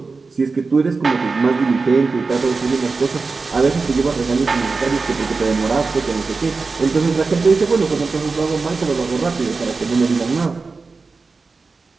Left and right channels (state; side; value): quieter; left; 4.2 dB